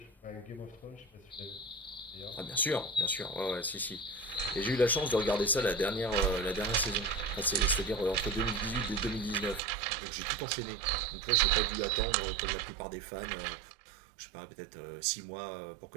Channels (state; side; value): drops out; left; at 9.6 s